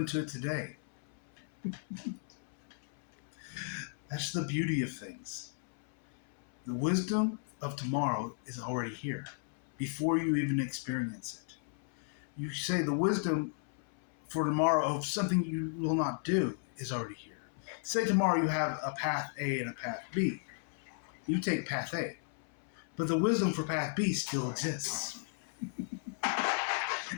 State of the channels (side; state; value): right; silent; 54 dB below the other